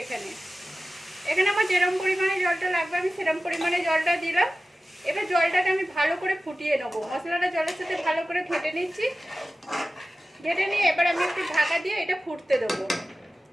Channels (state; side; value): normal; both; correlation 0.95